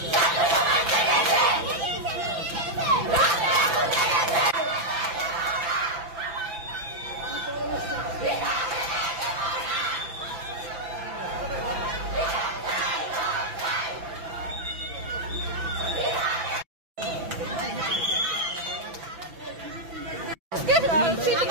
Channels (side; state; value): left; late; 5.9 ms